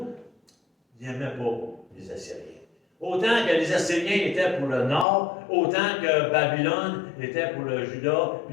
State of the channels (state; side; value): drops out; right; at 5.1 s